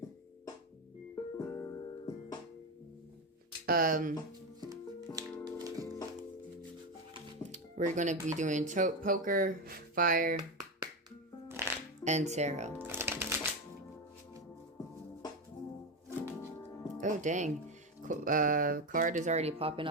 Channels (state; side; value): normal; both; correlation 0.14